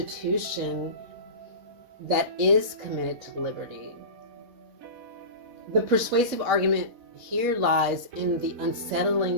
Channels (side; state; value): left; late; 4.1 ms